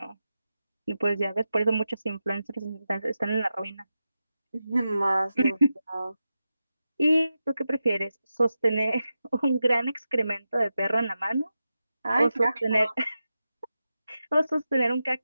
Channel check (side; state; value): both; inverted; correlation -0.91